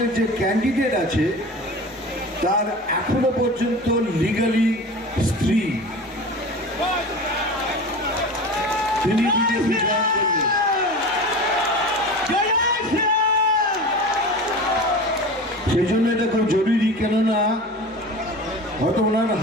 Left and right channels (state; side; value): normal; both; correlation 0.34